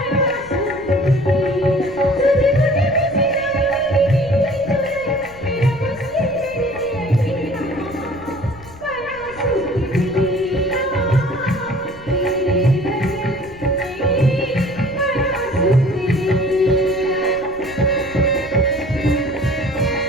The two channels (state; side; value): noise; left; rumble, 20 dB below the sound